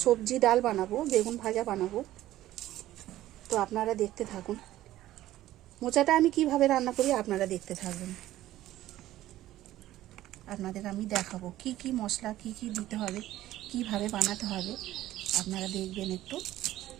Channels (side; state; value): left; quieter; 14.6 dB